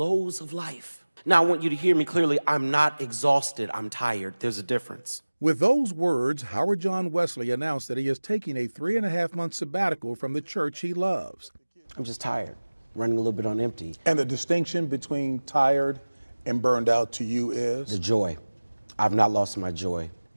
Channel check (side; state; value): both; inverted; correlation -1.00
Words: of life. Now, I want you to hear me clearly. I'm not exhausted. I'm tired. There's a difference. With those words, Howard John Wesley announced that he is taking a 3.5-month sabbatical from the church he loves. I'm just tired, running a little bit on empty. And the distinction between tired and burned out to you is? The joy. I've not lost my joy.